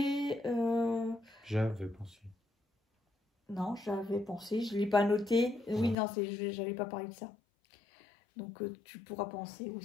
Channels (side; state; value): right; drops out; at 6.0 s